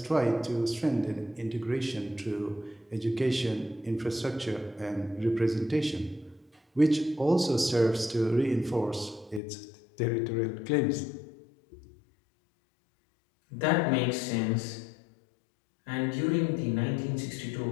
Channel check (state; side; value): drops out; right; at 9.4 s